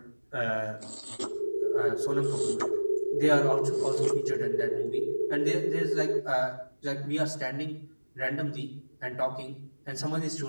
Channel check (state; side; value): inverted; both; correlation -1.00